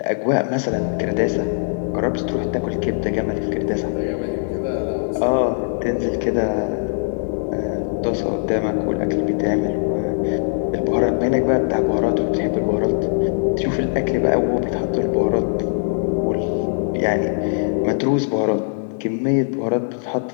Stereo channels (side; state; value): right; silent; 61 dB below the other